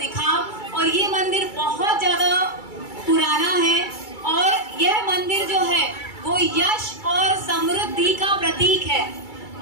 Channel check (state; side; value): late; right; 2.3 ms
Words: और ये मंदिर बहुत ज्यादा पुराना है और यह मंदिर जो है वो यश और समृद्धि का प्रतीक है।